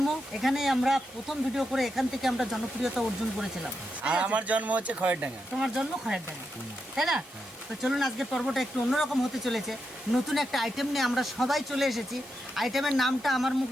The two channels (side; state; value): both; normal; correlation 0.85